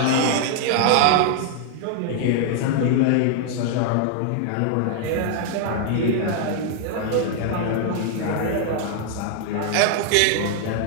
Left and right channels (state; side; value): different; both; correlation 0.00